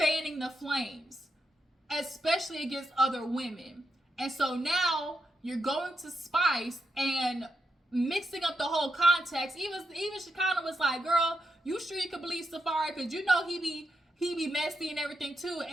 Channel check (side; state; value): both; normal; correlation 0.85